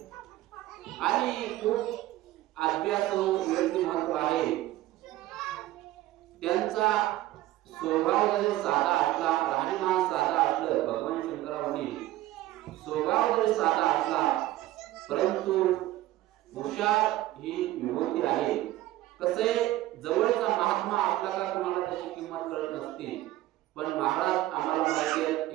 आणि खूप अभ्यासू व्यक्तिमत्व आहे. त्यांचा स्वभाव जरी साधा असला, राहणीमान साधा असलं, भगवान शंकरांनी स्वभाव जरी साधा असला परंतु हुशार ही विभूती आहे. कसे जवळचा महात्मा असला का तुम्हाला त्याची किंमत कळत नसते. पण महाराज आम्हाला माहिती आहे,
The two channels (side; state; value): left; quieter; 15.6 dB